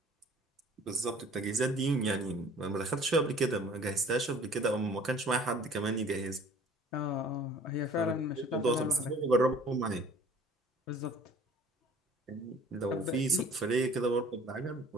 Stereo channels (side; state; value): both; normal; correlation 0.50